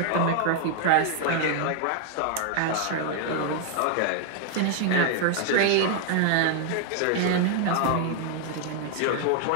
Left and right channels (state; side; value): different; both; correlation 0.00